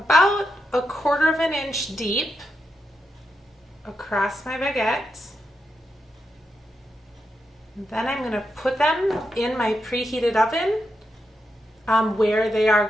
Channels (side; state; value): both; normal; correlation 0.85